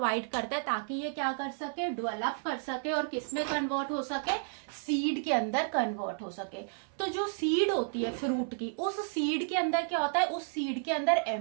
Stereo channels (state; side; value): silent; left; 56 dB below the other